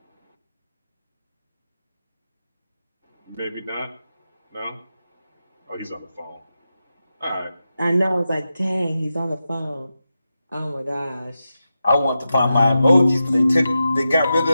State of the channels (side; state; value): both; inverted; correlation -0.90